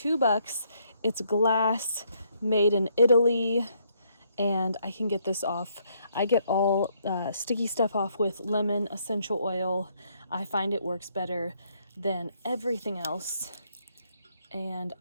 It's glass, made in Italy, and I can get this off. I get all sticky stuff off with lemon essential oil. I find it works better than everything else. And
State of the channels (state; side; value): inverted; both; correlation -0.71